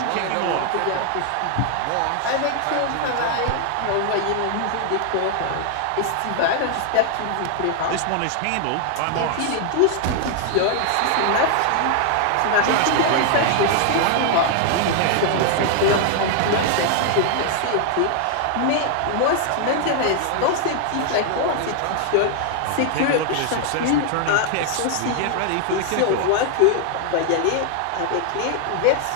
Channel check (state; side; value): different; both; correlation 0.00